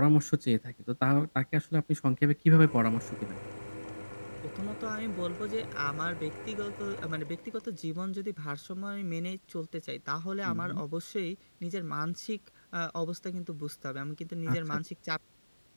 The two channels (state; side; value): inverted; both; correlation -1.00